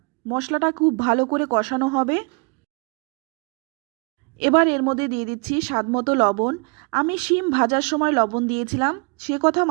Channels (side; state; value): left; quieter; 33.2 dB